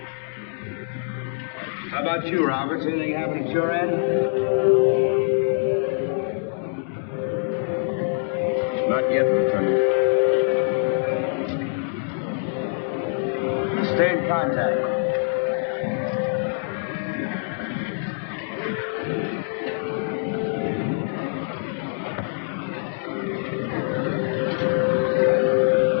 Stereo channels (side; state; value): right; silent; digital silence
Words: How about you, Roberts? Anything happen at your end? Not yet, Lieutenant. Stay in contact.